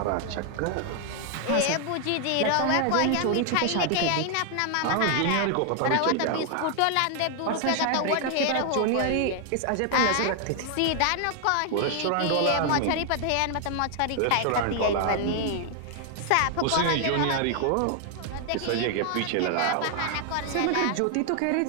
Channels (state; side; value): different; both; correlation 0.00